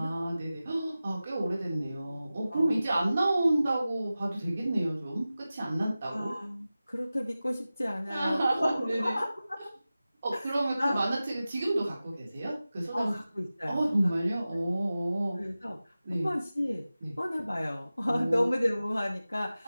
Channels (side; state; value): both; inverted; correlation -0.96